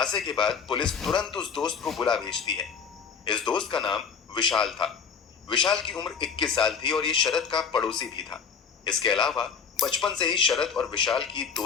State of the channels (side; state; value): right; quieter; 6.2 dB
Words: के बाद पुलिस तुरंत उस दोस्त को बुला भेजती है। इस दोस्त का नाम विशाल था। विशाल की उम्र 21 साल थी और ये शरद का पड़ोसी भी था। इसके अलावा बचपन से ही शरद और विशाल की